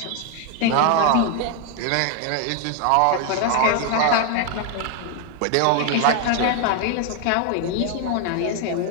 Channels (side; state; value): both; different; correlation 0.01